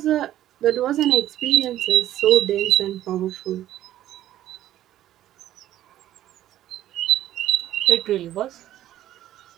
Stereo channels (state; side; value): quieter; left; 13.0 dB